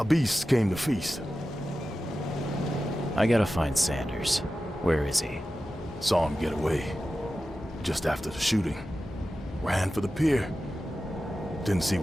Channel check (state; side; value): normal; both; correlation 0.93